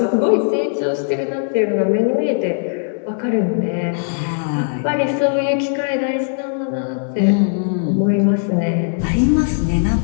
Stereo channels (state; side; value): silent; right; digital silence